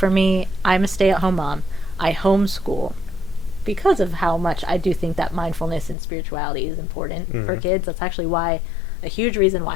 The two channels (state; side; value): drops out; right; at 6.0 s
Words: me, I'm a stay-at-home mom. I homeschool because of how much I do think that mindfulness and spirituality is important for kids. That's actually a huge reason